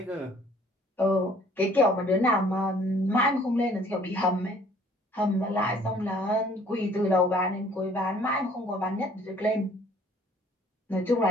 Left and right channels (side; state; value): both; normal; correlation 0.57